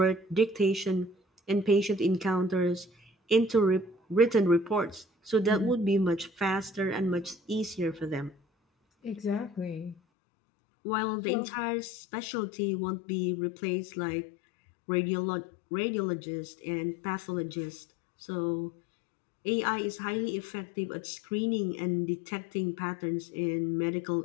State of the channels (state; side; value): drops out; right; at 10.0 s